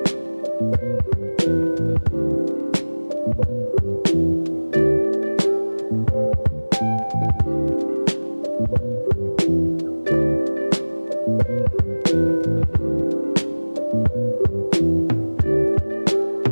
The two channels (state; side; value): inverted; both; correlation -1.00